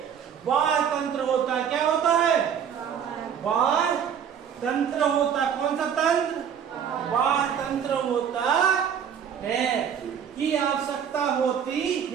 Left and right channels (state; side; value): quieter; left; 8.1 dB